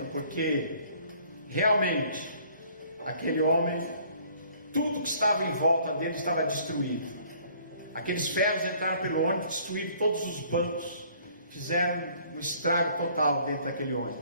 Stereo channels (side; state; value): both; inverted; correlation -0.58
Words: Porque realmente aquele homem, tudo que estava em volta dele estava destruído. Aqueles ferros entraram pelo ônibus, destruíram todos os bancos, fizeram um estrago total dentro daquele